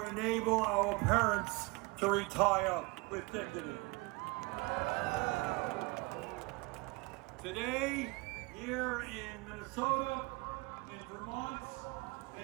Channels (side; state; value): left; quieter; 26.0 dB